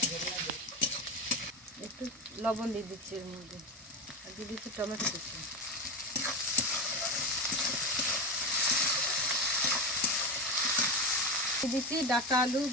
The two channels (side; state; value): both; normal; correlation 0.18